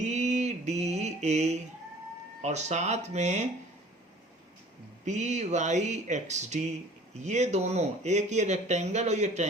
डी ए और साथ में बी वाई एक्स डी, ये दोनों, एक ये रेक्टेंगल और ये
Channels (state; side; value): normal; both; correlation 0.49